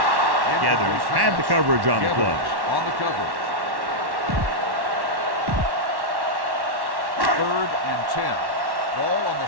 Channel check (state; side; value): late; left; 1.1 ms